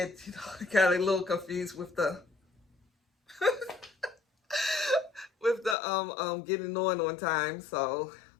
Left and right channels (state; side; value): drops out; right; at 5.8 s